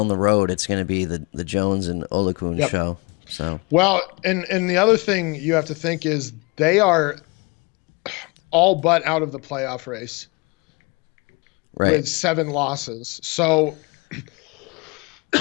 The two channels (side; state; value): right; quieter; 28.3 dB